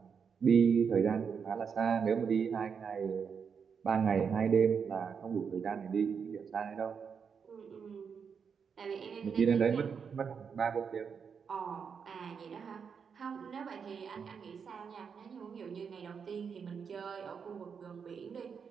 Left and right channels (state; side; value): quieter; left; 6.4 dB